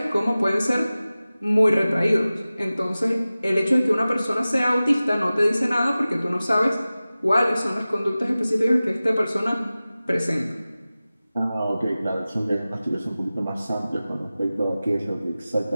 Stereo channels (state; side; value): inverted; both; correlation -0.97